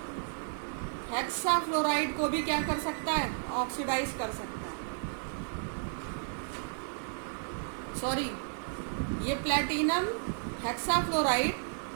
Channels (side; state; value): left; silent; digital silence